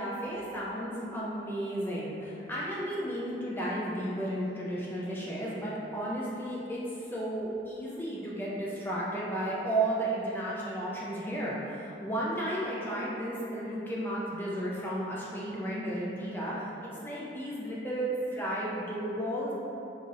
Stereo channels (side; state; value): both; normal; correlation 0.47